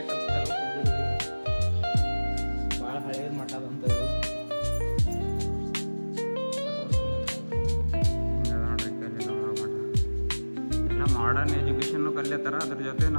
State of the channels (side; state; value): both; inverted; correlation -1.00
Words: ಭಾಳ ಹಳೇದು ಮಠ ಅಂತ ಮಾಡರ್ನ್ ಎಜುಕೇಷನ್ನು ಕಲಿಯತ್ತಾರ, ಅದ್ರ ಜೊತೆ